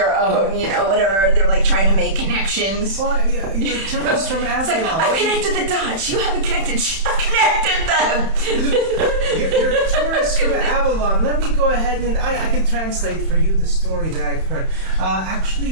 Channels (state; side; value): late; left; 31 ms